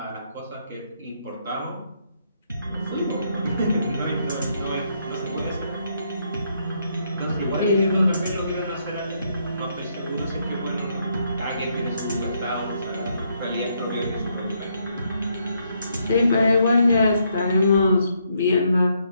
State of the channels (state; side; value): inverted; both; correlation -0.74